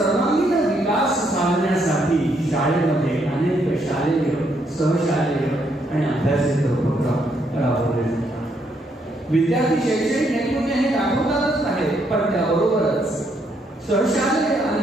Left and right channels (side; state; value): both; normal; correlation 0.74